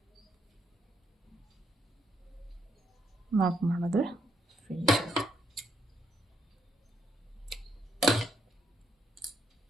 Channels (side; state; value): both; normal; correlation 0.75